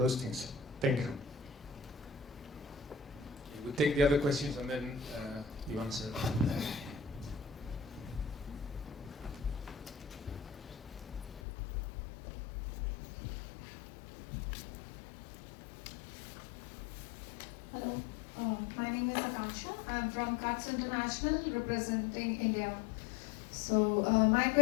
things? Thank you. We'll take the other questions and then you answer. Hello, my name is Akenji. I'm from Cuts International, representing India. So my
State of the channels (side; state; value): right; drops out; at 11.4 s